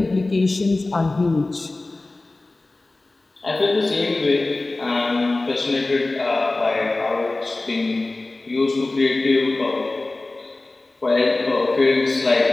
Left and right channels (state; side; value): quieter; right; 3.1 dB